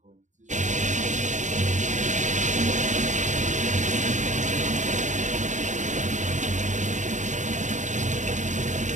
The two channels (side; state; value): left; late; 0.35 ms